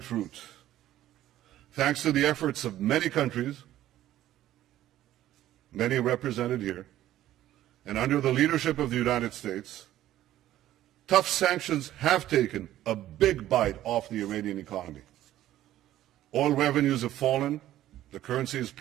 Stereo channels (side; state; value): left; quieter; 13.4 dB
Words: Thanks to the efforts of many countries, many represented here, and under the leadership of the United States, tough sanctions have taken a big bite off the Iranian economy. Oil revenues have fallen, the currency has